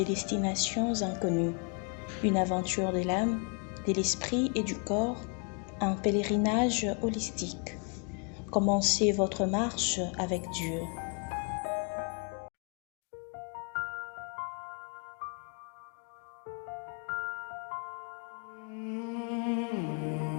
destinations inconnues. Une aventure de l'âme, de l'esprit et du corps, un pèlerinage holistique. Commencez votre marche avec Dieu.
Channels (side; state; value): right; quieter; 38.0 dB